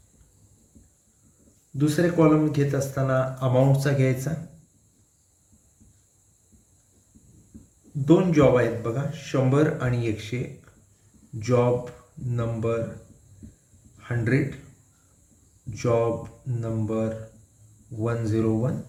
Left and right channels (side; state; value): both; identical; correlation 1.00